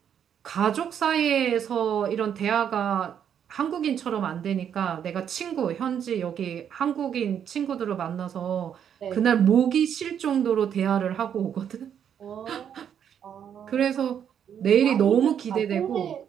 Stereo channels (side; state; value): left; quieter; 8.7 dB